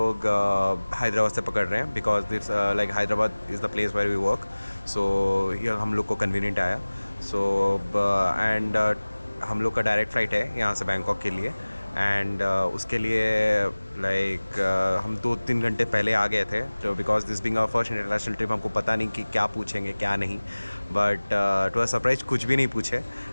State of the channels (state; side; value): inverted; both; correlation -1.00